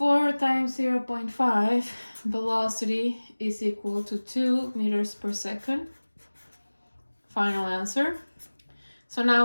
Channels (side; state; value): both; inverted; correlation -1.00